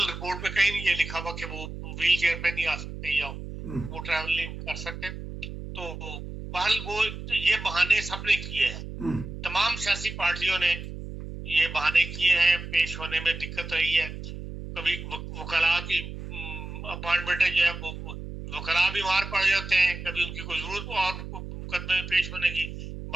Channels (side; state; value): right; noise; hum, 9 dB below the sound